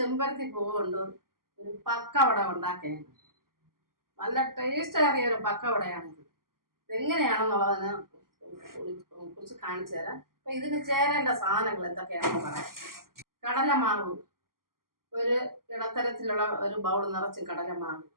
ചെമ്പരത്തി പൂവ് കൊണ്ട് ഒരു പക്കവട ഉണ്ടാക്കുകയാണ്. നല്ല ടേസ്റ്റ് ഏറിയ ഒരു പക്കവടയാണിത്. എങ്ങനെയാണെന്നുള്ളതിനെ കുറിച്ച് കാണിച്ചു തരാം. അപ്പൊ ഇതിന് ചേരേണ്ട സാധനങ്ങൾ എന്തൊക്കെയാണെന്ന് പറയാം. കടലമാവ്, ഒരു ഇടത്തരത്തിലുള്ള ഒരു ബൗൾ നിറച്ചും കടലമാവ്.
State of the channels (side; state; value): left; late; 0.92 ms